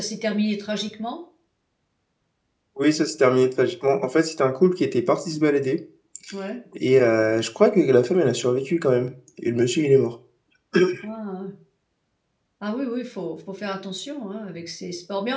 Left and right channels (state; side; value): identical; both; correlation 1.00